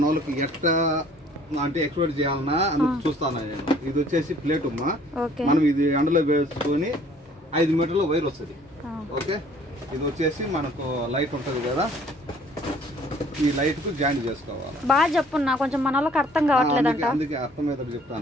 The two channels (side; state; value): both; normal; correlation 0.56